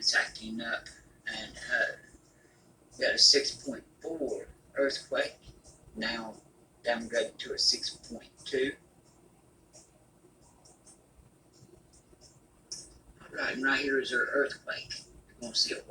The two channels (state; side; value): identical; both; correlation 1.00